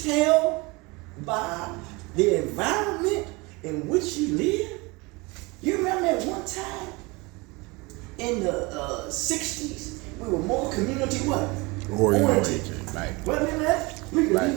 by the environment in which you live? You remember at one time in the 60s, we were more community what? Oriented. Right. Wasn't that? We could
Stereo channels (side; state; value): left; quieter; 25.3 dB